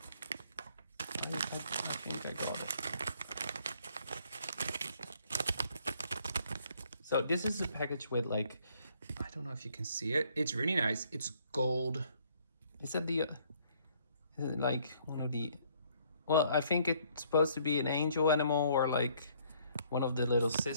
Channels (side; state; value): both; inverted; correlation -0.64